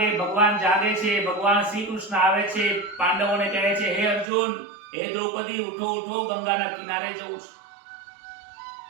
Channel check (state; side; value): drops out; left; at 4.2 s